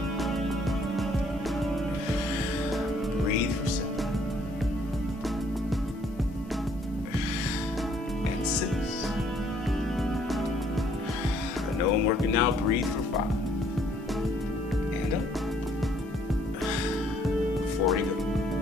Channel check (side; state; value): both; normal; correlation 0.64